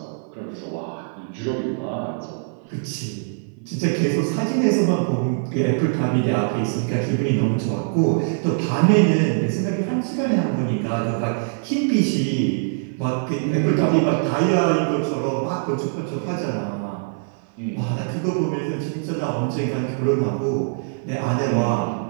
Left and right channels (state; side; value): silent; left; 55 dB below the other